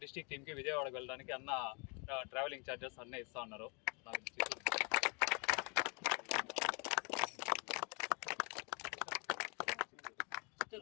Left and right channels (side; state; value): right; quieter; 33.6 dB